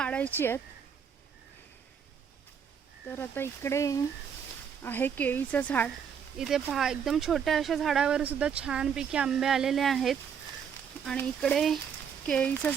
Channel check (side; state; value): left; quieter; 7.3 dB